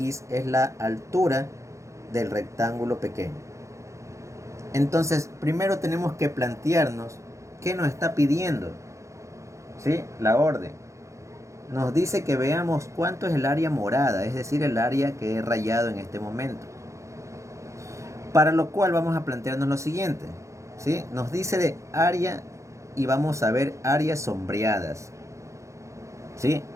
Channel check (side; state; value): left; late; 0.15 ms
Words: es la altura del rectángulo pequeño. Entonces, primero tenemos que plantearnos qué nos está pidiendo. ¿Sí? La orden. Nos dice que veamos cuánto es el área morada, es decir, el área que he rayado en este momento. Para lo cual vamos a plantearnos lo siguiente. ¿Sí? Nos dice de área y vamos a ver áreas sombreadas. ¿Sí?